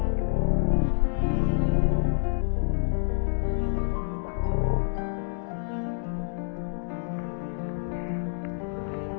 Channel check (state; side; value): silent; right; digital silence